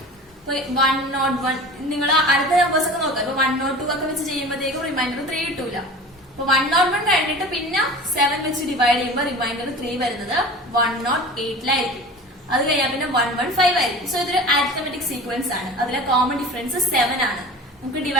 ഇപ്പൊ 101 നിങ്ങൾ അടുത്ത നമ്പേഴ്സ് ഒക്കെ നോക്കാം. ഇപ്പൊ 102 ഒക്കെ വെച്ച് ചെയ്യുമ്പോഴത്തേക്കും റിമൈൻഡർ 3 കിട്ടൂല. അപ്പൊ 101 കഴിഞ്ഞിട്ട് പിന്നെ 7 വെച്ച് ഡിവൈഡ് ചെയ്യുമ്പോൾ റിമൈൻഡർ 3 വരുന്നത് 108 അത് കഴിഞ്ഞാൽ പിന്നെ 115 ആയിരിക്കും. സോ ഇതൊരു അരിത്തമെറ്റിക് സീക്വൻസ് ആണ്. അതിലെ കോമൺ ഡിഫറൻസ് 7 ആണ്. നമുക്ക്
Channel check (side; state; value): both; normal; correlation 0.37